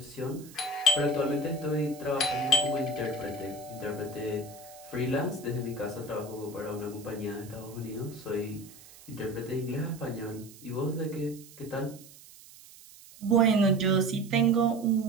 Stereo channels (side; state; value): right; noise; hiss, 20 dB below the sound